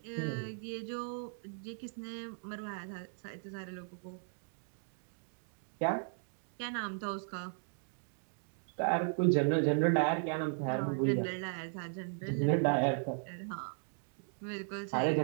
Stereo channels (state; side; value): silent; left; digital silence